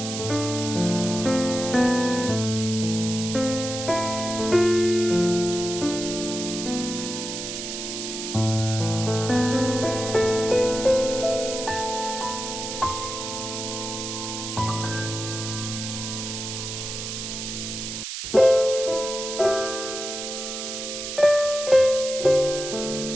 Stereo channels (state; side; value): noise; right; hiss, 6 dB below the sound